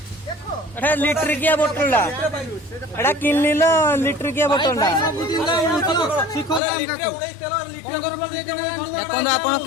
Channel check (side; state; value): right; drops out; at 6.6 s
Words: एटा लीटर किया बोतल एटा किन लीलो लीटर किया बोतल आपन